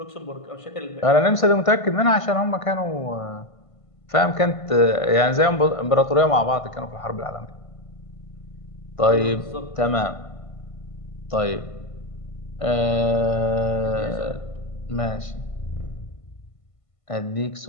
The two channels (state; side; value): late; right; 1.5 ms